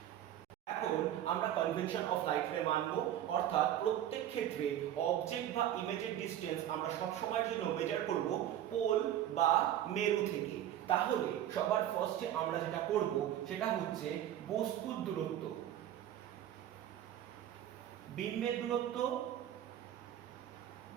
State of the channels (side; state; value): left; quieter; 11.6 dB